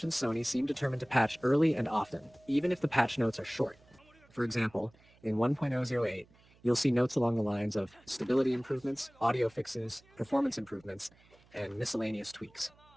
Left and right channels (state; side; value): noise; right; hum, 29 dB below the sound